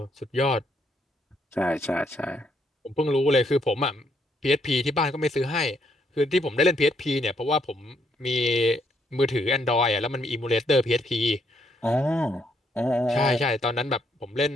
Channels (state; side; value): normal; both; correlation 0.73